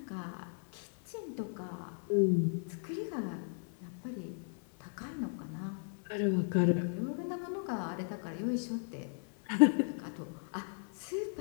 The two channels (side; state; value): right; silent; 54 dB below the other